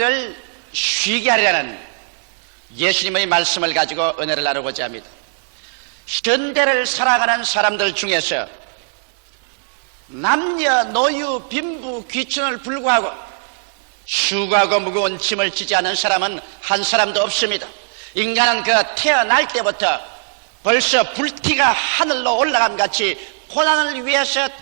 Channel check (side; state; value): left; silent; digital silence